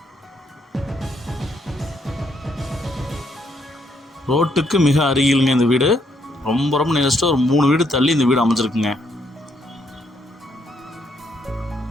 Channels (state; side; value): normal; both; correlation 0.73